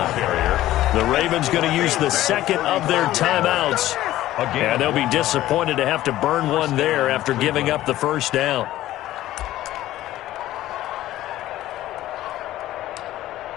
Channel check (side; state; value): right; quieter; 14.7 dB